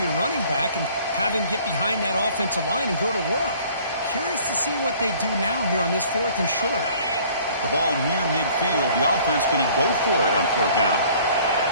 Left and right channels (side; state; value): both; inverted; correlation -0.54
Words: your running back and have him get behind that offensive line and go to work. Curious to see what they do now here on this 4th and short. The ball near midfield. The offense going to go for it on 4th down.